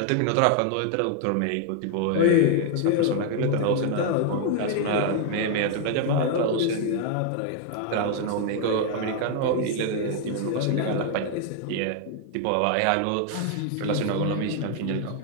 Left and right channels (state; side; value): different; both; correlation 0.00